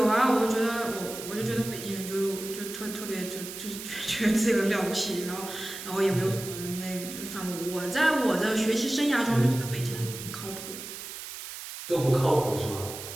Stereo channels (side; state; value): right; noise; hiss, 10 dB below the sound